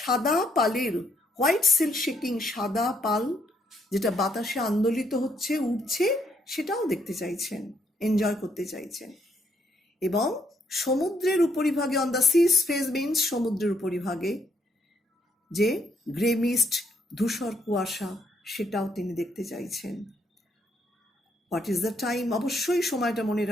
পালের, হোয়াইট সিল্ক শেকিং, সাদা পাল যেটা বাতাসে আন্দোলিত হচ্ছে, উঠছে, সেটাও দেখতে চাইছেন, এনজয় করতে চাইছেন। এবং সমুদ্রের উপরিভাগে, on the sea's face means সমুদ্রের উপরিভাগে যে গ্রে মিস্ট, ধূসর কুয়াশা, সেটাও তিনি দেখতে চাইছেন। What is the time? অবশ্যই সময়টা মনে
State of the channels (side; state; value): both; normal; correlation 0.72